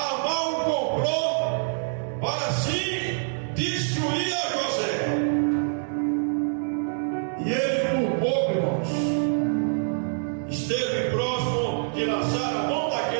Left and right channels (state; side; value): silent; left; digital silence